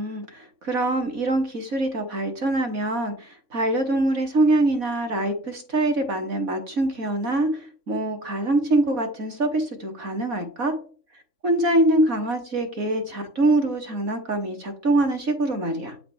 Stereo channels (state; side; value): late; left; 4.1 ms